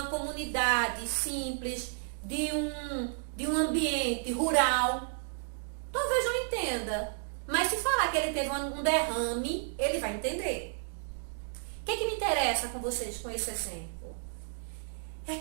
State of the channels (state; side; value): silent; left; digital silence